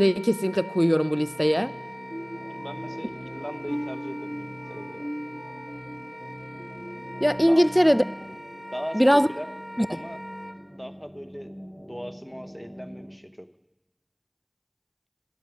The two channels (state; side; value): identical; both; correlation 1.00